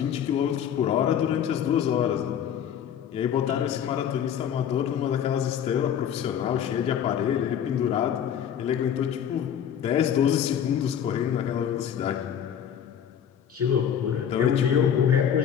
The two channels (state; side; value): quieter; right; 8.9 dB